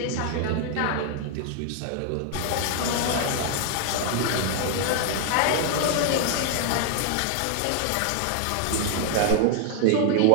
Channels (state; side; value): different; both; correlation 0.00